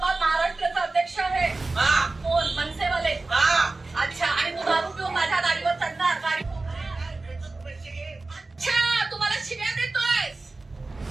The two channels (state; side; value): quieter; left; 3.4 dB